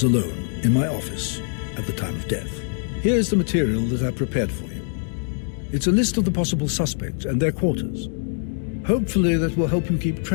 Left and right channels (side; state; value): right; silent; digital silence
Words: alone in my office at the time of death. Here's the material that I prepared for you. It's a list of the possible suspects and their quarters. Hopefully that will help you keep